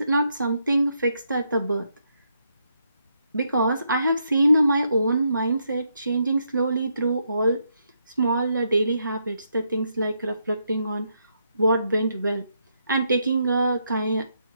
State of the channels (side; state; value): both; inverted; correlation -0.78